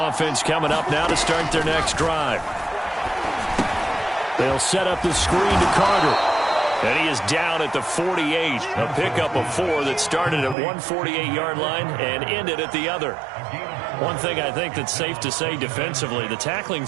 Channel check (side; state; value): left; drops out; at 10.6 s